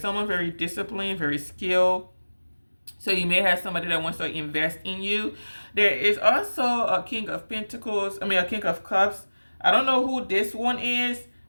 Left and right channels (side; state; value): both; inverted; correlation -1.00